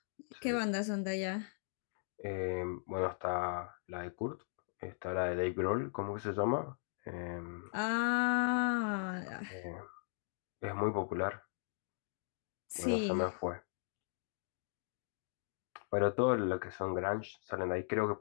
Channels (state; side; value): silent; right; digital silence